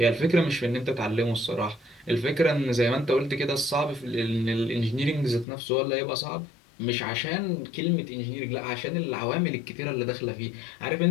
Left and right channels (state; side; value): drops out; right; at 5.5 s